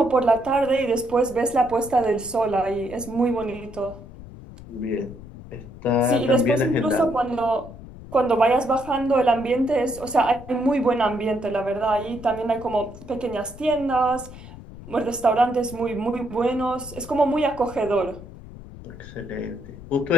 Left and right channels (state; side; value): noise; left; rumble, 16 dB below the sound